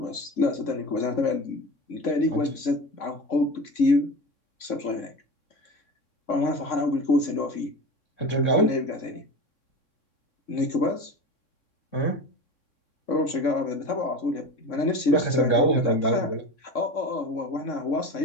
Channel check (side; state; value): right; late; 3.6 ms